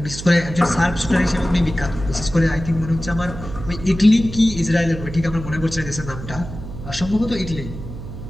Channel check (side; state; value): right; noise; hum, 10 dB below the sound